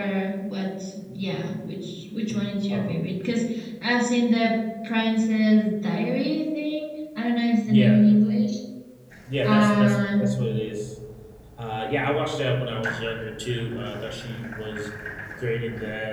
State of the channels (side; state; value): both; identical; correlation 1.00